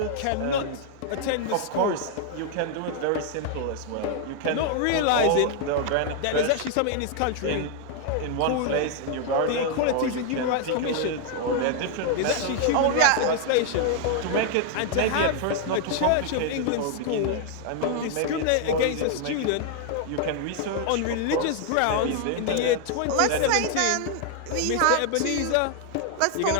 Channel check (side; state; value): both; different; correlation 0.00